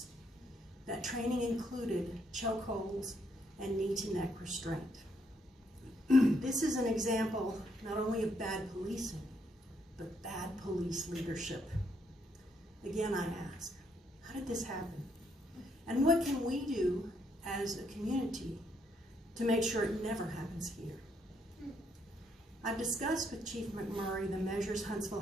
That training included chokeholds and knee-to-neck restraint. This is an example not only of bad policing, but bad police leadership. Again, I ask, how did this happen? And what can we do as a community to make sure it never happens here? I've discussed with Chief McMurray the measures Huntsville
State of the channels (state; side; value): normal; both; correlation 0.73